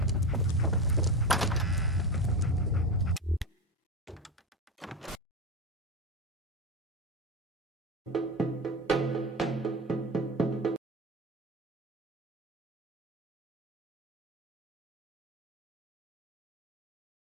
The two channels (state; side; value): normal; both; correlation 0.22